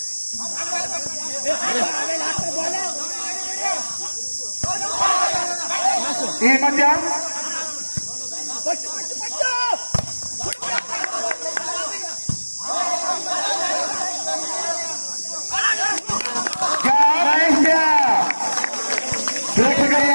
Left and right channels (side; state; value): both; inverted; correlation -1.00